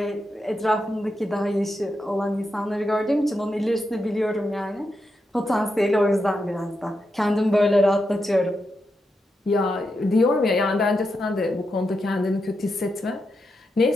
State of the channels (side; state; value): both; normal; correlation 0.86